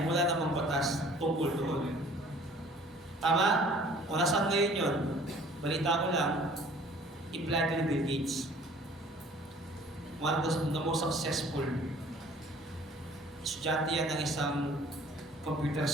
wala namang batas tungkol doon. Tama? Kung nasaan ngayon yun, balita ko lang, i-plan ni Bill Gates. One of the most successful estudyante yan ng isang computer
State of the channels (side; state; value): both; normal; correlation 0.52